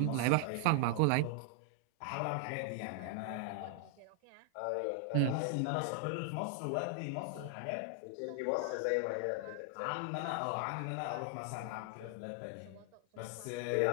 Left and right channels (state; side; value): different; both; correlation 0.00